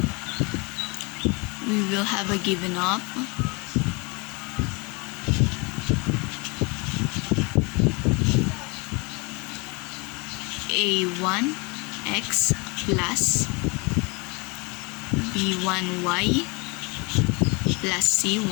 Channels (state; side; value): quieter; right; 29.1 dB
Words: we will have a given of a1x plus b1y plus